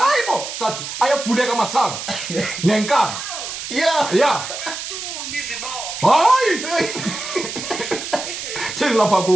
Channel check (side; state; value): right; noise; hiss, 7 dB below the sound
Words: sathi ayavuleka masango. Ngenkani. Yeah. Hayi. Thini lapha